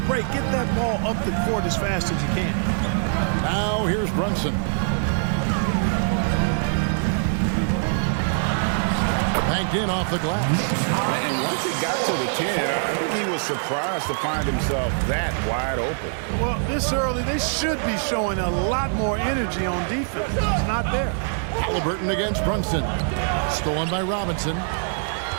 break. Get that ball up the court as fast as you can. Now here's Brunson. Banked in off the glass. And once he got to the 10, I think he was surprised to find himself that wide open. Well, this early, they should be showing a lot more energy on defense. It's not there. Halliburton against Brunson. Stolen by Robinson.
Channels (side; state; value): left; silent; digital silence